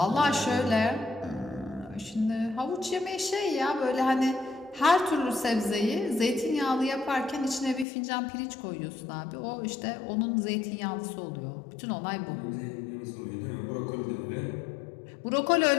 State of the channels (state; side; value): drops out; right; at 7.9 s